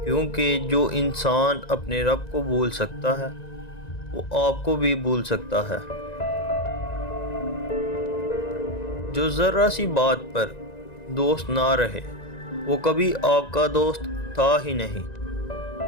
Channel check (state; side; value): late; right; 1.9 ms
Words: کیونکہ جو انسان اپنے رب کو بھول سکتا ہے وہ آپ کو بھی بھول سکتا ہے۔ جو ذرا سی بات پر دوست نہ رہے وہ کبھی آپ کا دوست تھا ہی نہیں۔